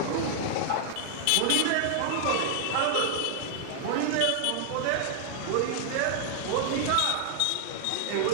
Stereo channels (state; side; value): different; both; correlation -0.01